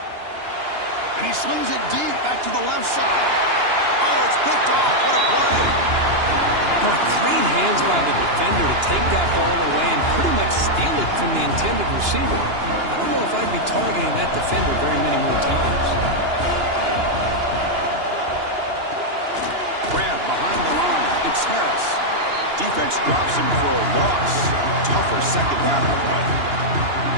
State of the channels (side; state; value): left; late; 2.9 ms